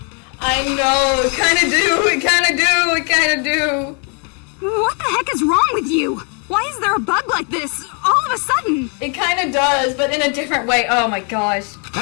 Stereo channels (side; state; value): right; quieter; 36.8 dB